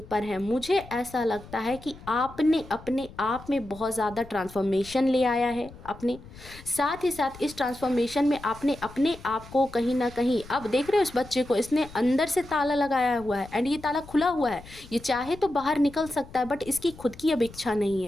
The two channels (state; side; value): noise; left; rumble, 18 dB below the sound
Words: पर हैं मुझे ऐसा लगता है कि आपने अपने आप में बहुत ज़्यादा ट्रांसफॉर्मेशन ले आया है अपने साथ ही साथ इस ट्रांसफॉर्मेशन में आपने अपने आप को कहीं ना कहीं, अब देख रहे हो इस बच्चे को, इसने अंदर से ताला लगाया हुआ है एंड ये ताला खुला हुआ है, ये चाहे तो बाहर निकल सकता है बट इसकी खुद की अब इच्छा नहीं